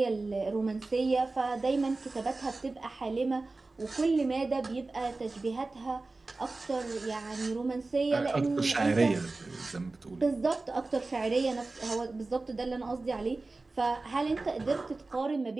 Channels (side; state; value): left; quieter; 3.4 dB